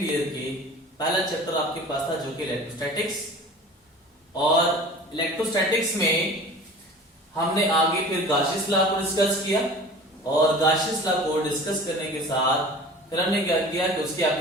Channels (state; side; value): normal; both; correlation 0.41